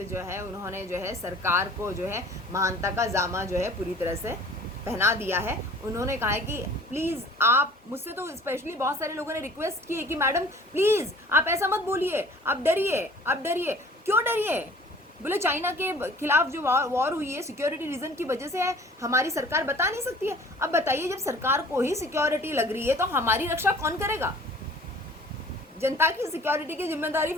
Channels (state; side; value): normal; both; correlation 0.49